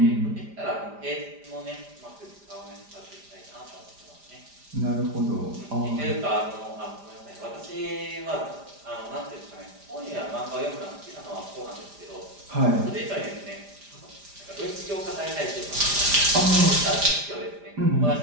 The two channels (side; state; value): left; late; 5.0 ms